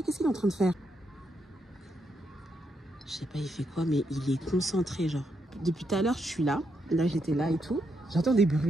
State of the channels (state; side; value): normal; both; correlation 0.80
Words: qu'est-ce qu'il est en train de faire? Je sais pas il fait quoi, mais il est concentré genre. Depuis tout à l'heure je suis là. Là j'étais là et tout. J'entends des